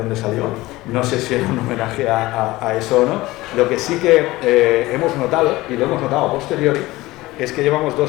salió, no sé si era un homenaje a eso o no. Lo que sí que hemos notado, y lo hemos notado a posteriori, es que llevamos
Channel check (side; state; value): right; quieter; 19.0 dB